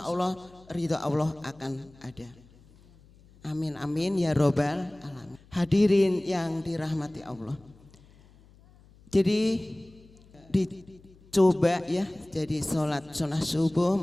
Allah ridho Allah akan ada. Amin amin ya robbal alamin. Hadirin yang dirahmati Allah, jadi dicoba ya, jadi sholat sunnah subuh,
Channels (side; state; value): left; noise; hum, 26 dB below the sound